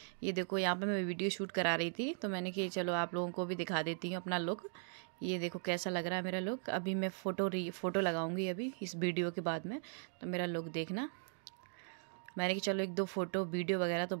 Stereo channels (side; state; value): left; silent; 52 dB below the other